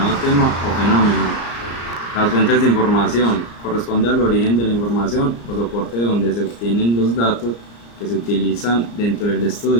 tema o fenómeno. Las fuentes de información corresponde al origen de la información o soporte de donde se obtienen los datos que se utilizan dentro del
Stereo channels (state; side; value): late; right; 34 ms